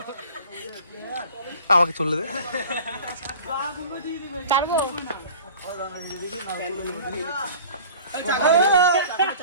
আমাকে চলে দে ছাড়বো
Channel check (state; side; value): inverted; both; correlation -0.44